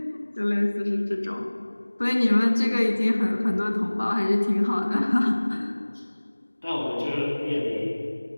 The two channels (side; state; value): both; inverted; correlation -1.00